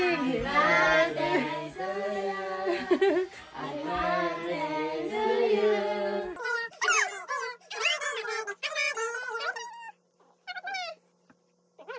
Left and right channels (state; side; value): identical; both; correlation 1.00